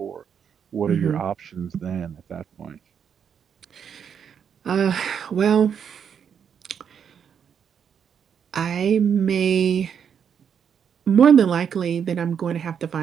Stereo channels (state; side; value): quieter; left; 7.7 dB